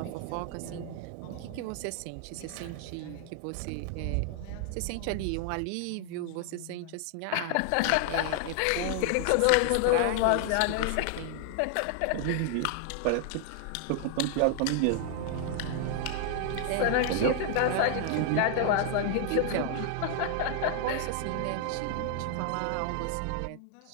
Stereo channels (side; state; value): both; different; correlation 0.00